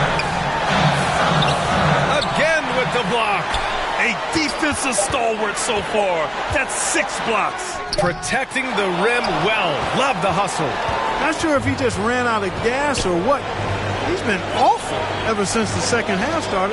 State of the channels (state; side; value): identical; both; correlation 1.00